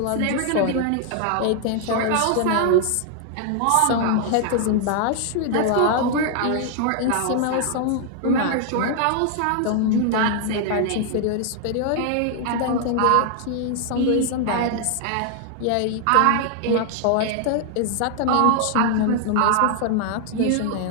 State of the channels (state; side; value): different; both; correlation 0.00